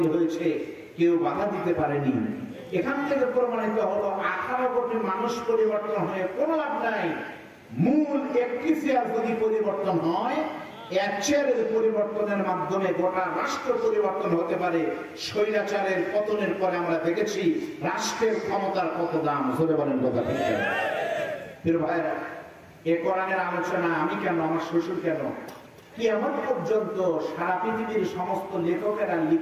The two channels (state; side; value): identical; both; correlation 1.00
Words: হয়েছে, কেউ বাধা দিতে পারেনি। এখান থেকে প্রমাণিত হলো 18 কোটি মানুষ পরিবর্তন হয়ে কোনো লাভ নাই। মূল একটি চেয়ার যদি পরিবর্তন হয়, এক চেয়ারের পরিবর্তনের মাধ্যমে গোটা রাষ্ট্র পরিবর্তন হতে পারে। স্বৈরাচারের পতনের পরে আমরা দেখেছি রাষ্ট্রের ক্ষমতার কত দাম। ধরে বলেন কথা ঠিক? প্রিয় ভাইরা, এ কোরআনের আলোচনা আমি কেন, আমার শ্বশুর কেন, কিয়ামত পর্যন্ত সারা পৃথিবীর সমস্ত লেখকেরা